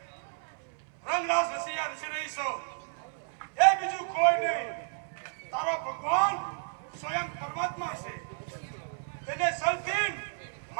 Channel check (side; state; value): left; silent; 57 dB below the other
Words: રંગરાસ રસિયા રચી રહી છો એ બીજું કોઈ નહીં, તારો ભગવાન સ્વયં પરમાત્મા છે. તેને સલતીન